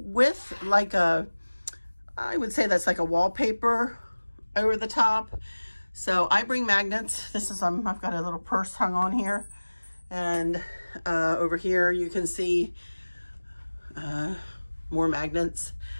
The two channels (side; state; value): both; inverted; correlation -1.00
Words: with like I would say that's like a wallpaper over the top. So I bring magnets. This is, I've got a little purse hung on here. And over here you can see more magnets.